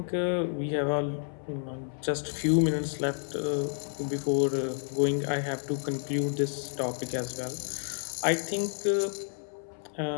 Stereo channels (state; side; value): silent; right; 57 dB below the other